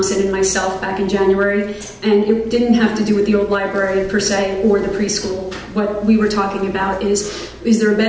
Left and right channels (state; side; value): identical; both; correlation 1.00